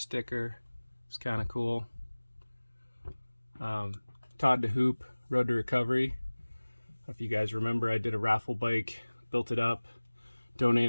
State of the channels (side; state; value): both; inverted; correlation -1.00